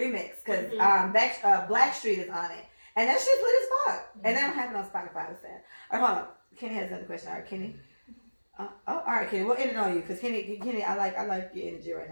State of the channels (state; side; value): inverted; both; correlation -1.00